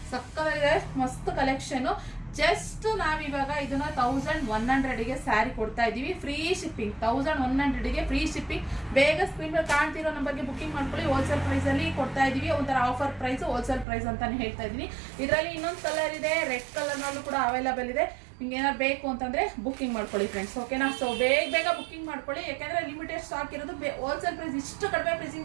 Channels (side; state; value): left; drops out; at 13.9 s